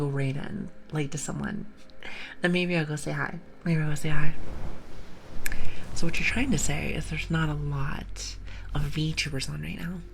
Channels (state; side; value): identical; both; correlation 1.00